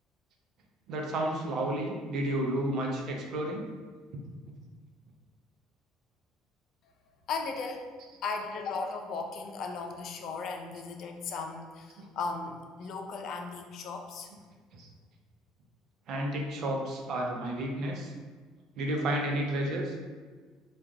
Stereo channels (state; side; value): normal; both; correlation 0.55